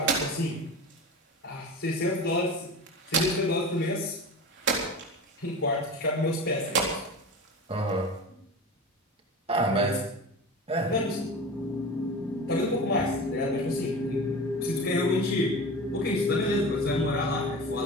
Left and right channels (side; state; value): both; normal; correlation 0.32